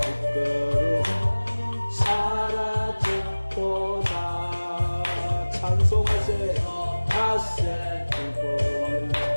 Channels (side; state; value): both; inverted; correlation -1.00